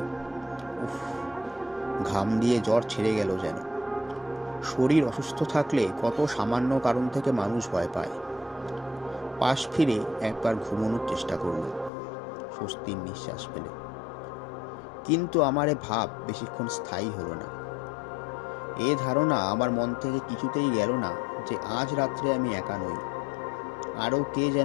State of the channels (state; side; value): drops out; right; at 11.9 s